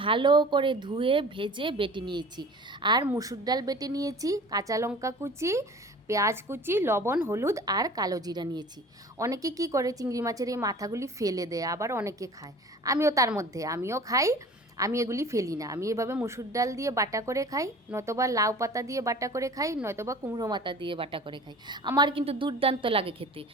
ভালো করে ধুয়ে ভেজে বেটে নিয়েছি। আর মুসুর ডাল বেটে নিয়েছি, কাঁচা লঙ্কা কুচি, পেঁয়াজ কুচি, লবণ, হলুদ আর কালো জিরা নিয়েছি। অনেকে কি করে চিংড়ি মাছের এই মাথাগুলি ফেলে দেয়, আবার অনেকে খায়। আমিও তার মধ্যে, আমিও খাই। আমি এগুলি ফেলি না, আমি এভাবে মুসুর ডাল দিয়ে বাটা করে খাই, নয়তোবা লাউ পাতা দিয়ে বাটা করে খাই, নয়তোবা কুমড়ো মাথা দিয়ে বাটা করে খাই। আমার কিন্তু দুর্দান্ত লাগে খেতে।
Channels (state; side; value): normal; both; correlation 0.43